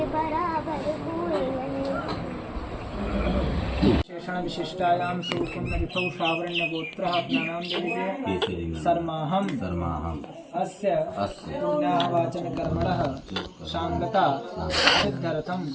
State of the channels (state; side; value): identical; both; correlation 1.00